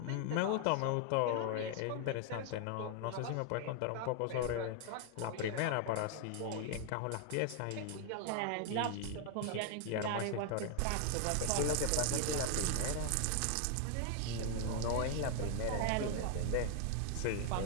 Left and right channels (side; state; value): both; different; correlation 0.00